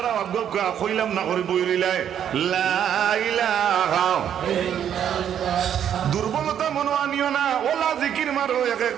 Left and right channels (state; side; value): quieter; left; 9.4 dB